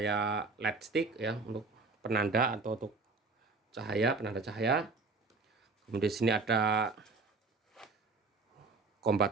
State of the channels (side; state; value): left; quieter; 4.0 dB